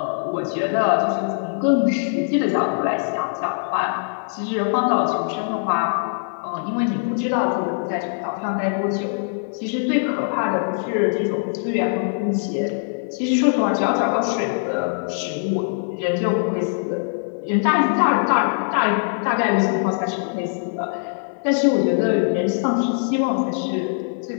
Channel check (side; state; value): right; silent; 61 dB below the other